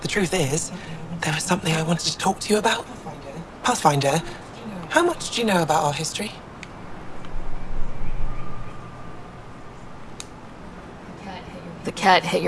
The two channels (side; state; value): both; identical; correlation 1.00